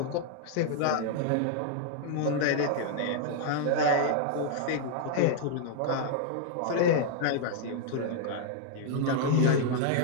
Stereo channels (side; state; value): both; different; correlation -0.01